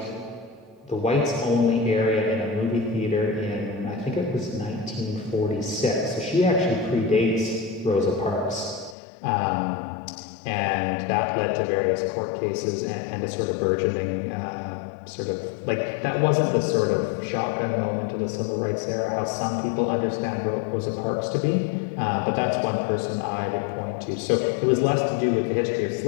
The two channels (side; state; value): right; drops out; at 9.0 s